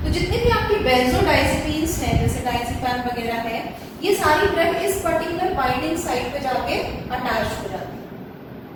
तो जितने भी आपकी बेंजोडाइजेपिन्स हैं जैसे डायजेपिन वगैरह है, ये सारी ड्रग इस पर्टिकुलर बाइंडिंग साइट पे जाके अटैच हो जाती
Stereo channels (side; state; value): both; identical; correlation 1.00